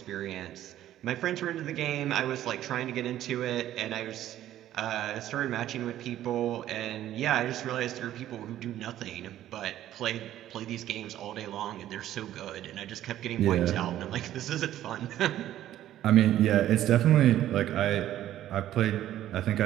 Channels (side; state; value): left; quieter; 12.7 dB